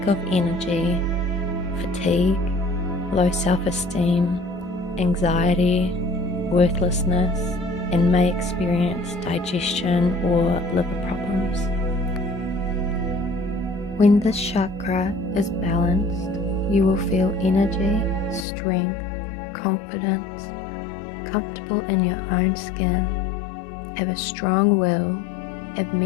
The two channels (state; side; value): drops out; right; at 18.4 s